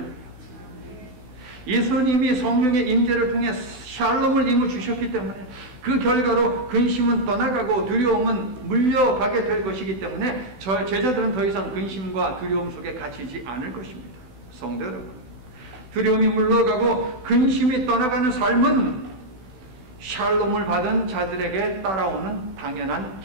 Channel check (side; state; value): left; late; 16 ms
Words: 예수님이 성령의 임재를 통해 샬롬을 이루 주셨기 때문에 그 결과로 근심은 떠나가고 두려움은 물려가게 될 것이기 때문에 저 제자들은 더 이상 근심과 두려움 속에 갇히지 않을 것입니다. 성도 여러분, 두려움이 물러가고 근심이 떠나가는 삶은 샬롬을 받은 자들에게 따라오는 당연한